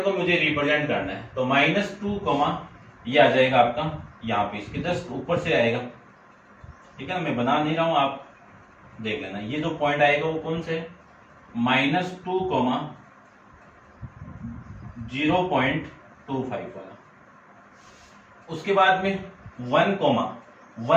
को मुझे रिप्रेजेंट करना है, तो -2, ये आ जाएगा आपका यहाँ पे, इसके जस्ट ऊपर से आएगा। ठीक है ना, मैं बना नहीं रहा हूं, आप देख लेना। ये जो पॉइंट आएगा वो कौन से, -2, 0.25 वाला। उसके बाद में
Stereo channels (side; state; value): both; identical; correlation 1.00